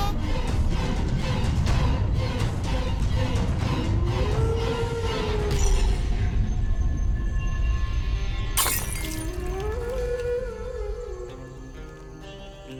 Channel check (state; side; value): identical; both; correlation 1.00